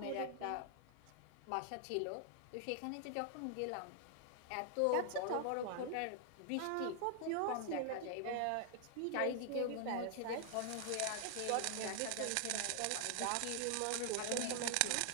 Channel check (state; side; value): different; both; correlation 0.00